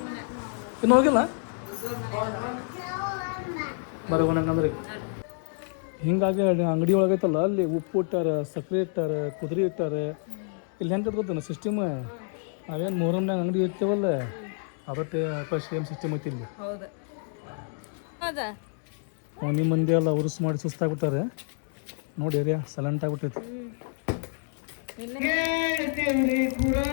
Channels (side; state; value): right; silent; 59 dB below the other